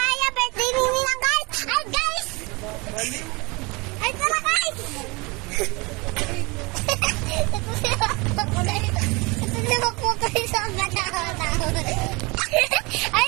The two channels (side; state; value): left; quieter; 26.3 dB